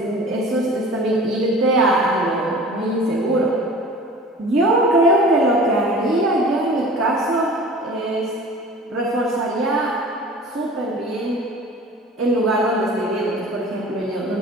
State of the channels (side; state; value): both; normal; correlation 0.41